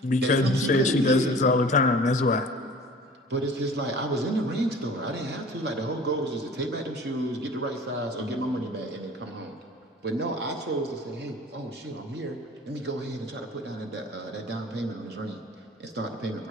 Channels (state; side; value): normal; both; correlation 0.45